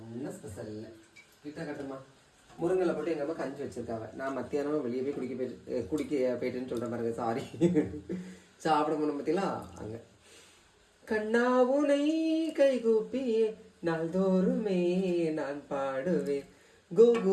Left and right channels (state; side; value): identical; both; correlation 1.00